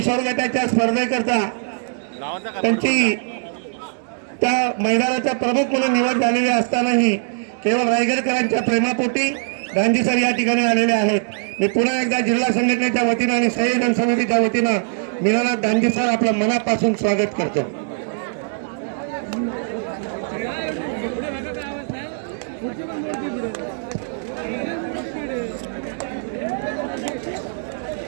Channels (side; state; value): left; silent; digital silence